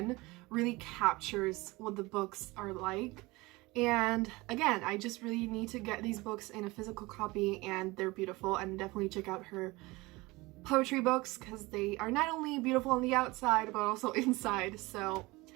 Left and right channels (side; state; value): left; quieter; 22.2 dB